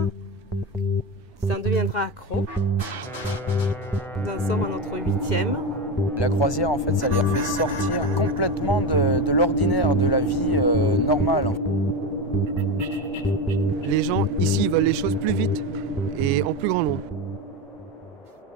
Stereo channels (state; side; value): normal; both; correlation 0.18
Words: tu en deviendras accro. Nous en sommes à notre 8e. La croisière, en fait, ça les fait sortir complètement de l'ordinaire, de la vie normale. Les gens ici veulent les choses plus vite et en plus grand nombre.